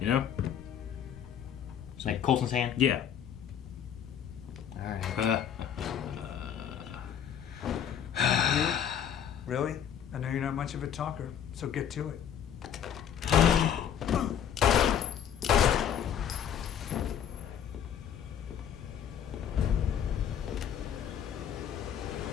you know? Like Coulson's hand? Yeah. Alright. Really? I know you're not much of a talker, so get to it.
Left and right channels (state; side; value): quieter; right; 9.1 dB